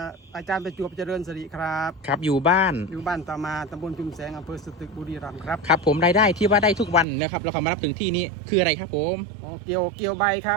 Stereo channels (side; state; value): left; drops out; at 7.1 s